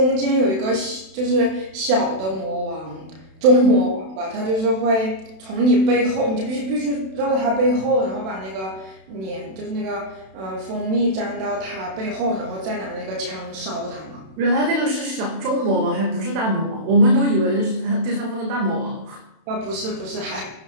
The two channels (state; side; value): late; left; 32 ms